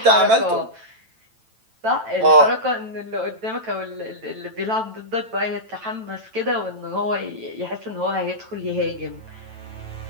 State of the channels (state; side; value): late; left; 9.0 ms